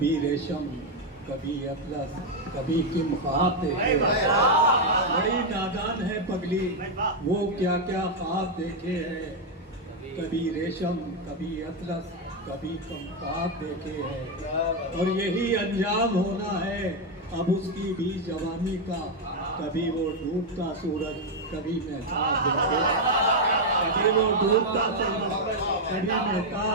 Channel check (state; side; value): normal; both; correlation 0.02